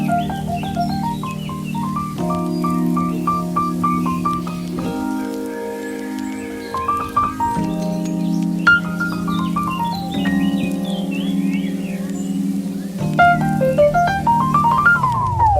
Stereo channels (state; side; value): identical; both; correlation 1.00